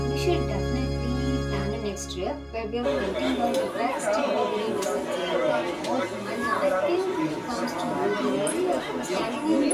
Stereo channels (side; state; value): both; identical; correlation 1.00